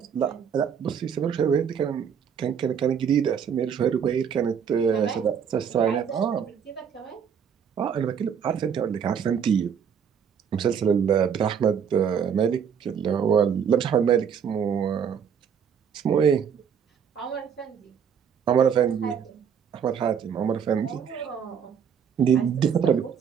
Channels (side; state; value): left; quieter; 7.5 dB